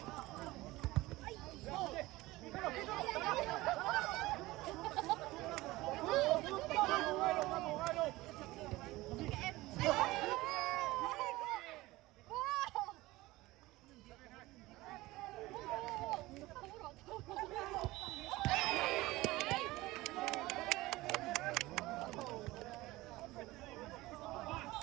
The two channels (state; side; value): quieter; left; 19.2 dB